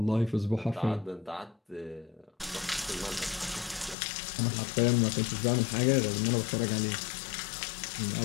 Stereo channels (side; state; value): right; drops out; at 4.0 s